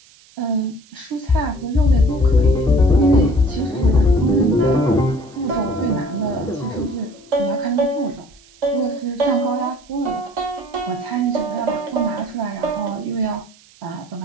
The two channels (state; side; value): noise; right; hiss, 27 dB below the sound